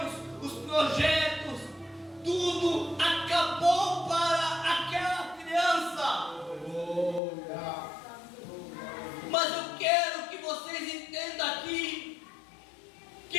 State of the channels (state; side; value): drops out; right; at 7.2 s